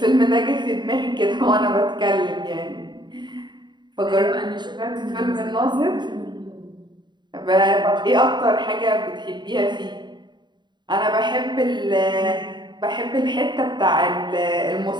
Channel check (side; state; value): left; late; 0.22 ms